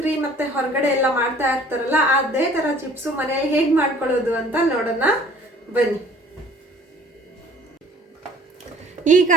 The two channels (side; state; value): both; normal; correlation 0.52